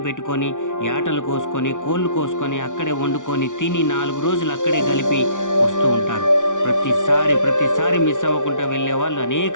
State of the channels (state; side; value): late; right; 0.87 ms